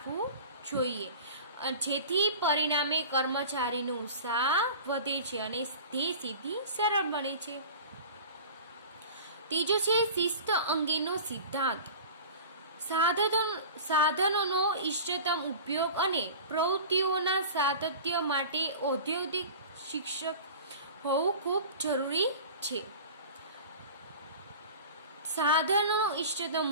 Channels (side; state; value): both; inverted; correlation -0.37